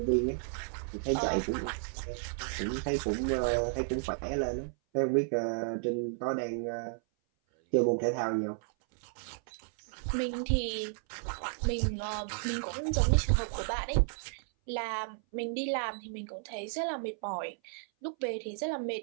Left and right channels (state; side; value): silent; left; 56 dB below the other